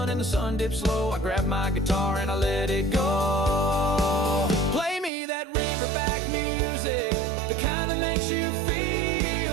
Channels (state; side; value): drops out; left; at 5.1 s